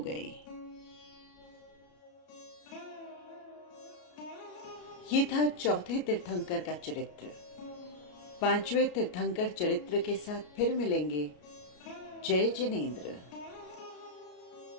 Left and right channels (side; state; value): right; late; 33 ms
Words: ये था चौथे तीर्थंकर का चरित्र। 5वें तीर्थंकर चरित्र के साथ फिर मिलेंगे। जय जिनेंद्र।